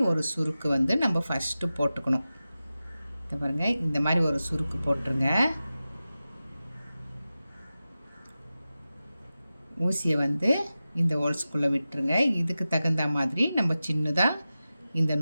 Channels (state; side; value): inverted; both; correlation -0.94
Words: ஒரு சுருக்கு வந்து நம்ம ஃபஸ்ட்டு போட்டுக்கணும். இதை பாருங்கள், இந்த மாதிரி ஒரு சுருக்கு போட்டுருங்க. ஊசியை வந்து இந்த ஹோல்ஸ்குள்ளே விட்டுருங்க. இதுக்கு தகுந்த மாதிரி நம்ம சின்னதாக இந்த